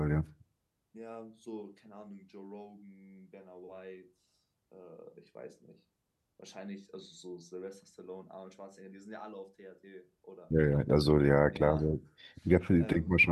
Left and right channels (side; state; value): both; identical; correlation 1.00